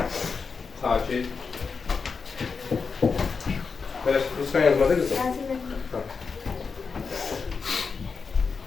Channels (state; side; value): quieter; right; 5.2 dB